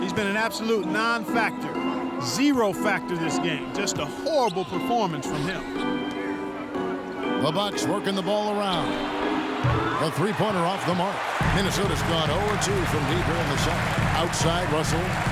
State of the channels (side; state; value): both; identical; correlation 1.00